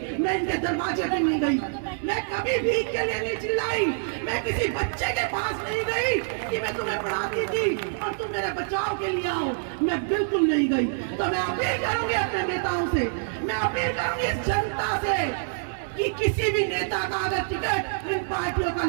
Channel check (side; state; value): left; silent; digital silence